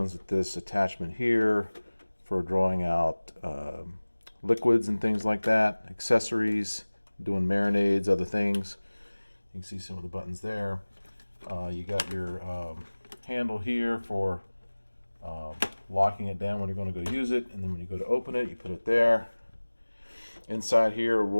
with this attachment here for drawing out liquids and things like that, accessories, doing marinades, other things. You can see some of the buttons there. You got your handle here for locking it down when you're going to go use it, and then when you go to open it, you put it there. Inside here, a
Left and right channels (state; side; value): inverted; both; correlation -1.00